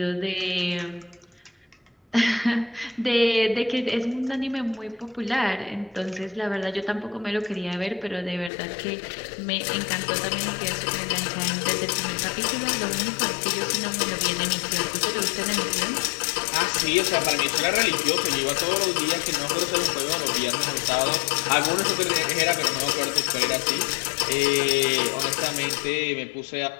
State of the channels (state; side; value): drops out; right; at 8.5 s